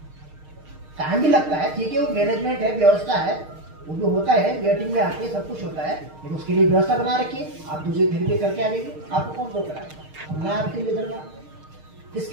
टाइम भी लगता है, ठीक है, वो मैनेजमेंट है, व्यवस्था है, वो जो होता है वेटिंग में आके सब कुछ होता है, लेकिन उसके लिए व्यवस्था बना रखिए। आप दूसरी थेरेपी करके आ जाएगी, आपको कौन रोक रहा है, मैं आपके लिए दूंगा।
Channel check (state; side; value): late; left; 6.5 ms